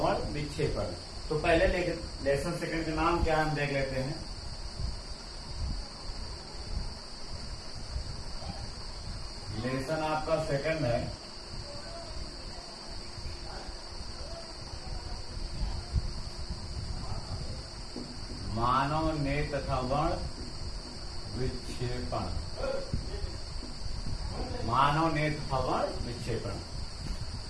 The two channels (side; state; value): both; identical; correlation 1.00